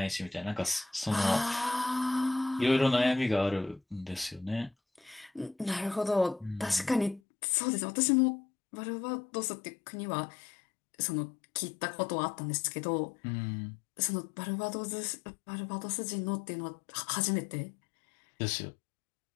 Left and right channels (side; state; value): right; drops out; at 7.2 s